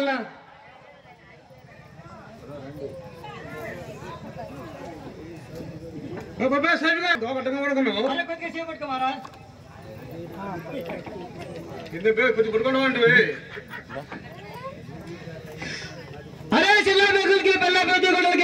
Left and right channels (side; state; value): both; identical; correlation 1.00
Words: అరే కొద్దిగా చేపట్టుకోమారా అరే చిల్ల బెగులకి పిల్ల పెద్ద గుడ్డలకి